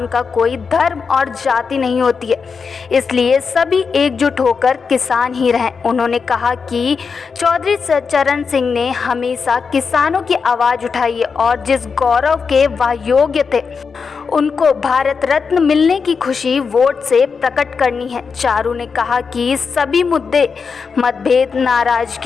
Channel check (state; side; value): quieter; right; 5.4 dB